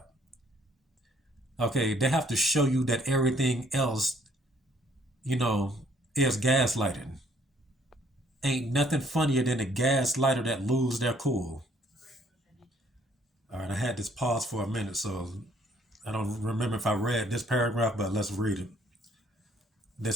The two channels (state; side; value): normal; both; correlation 0.63